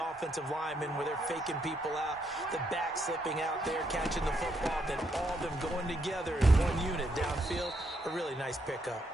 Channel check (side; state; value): both; normal; correlation 0.76